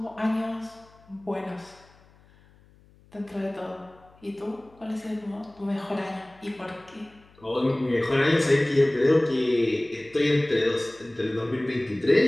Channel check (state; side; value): noise; left; hum, 28 dB below the sound